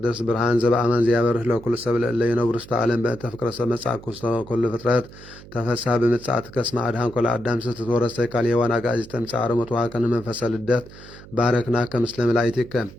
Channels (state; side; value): noise; right; hum, 18 dB below the sound